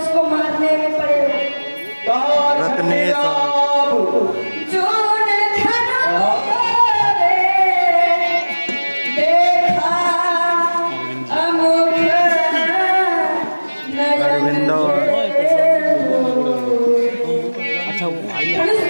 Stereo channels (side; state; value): both; inverted; correlation -1.00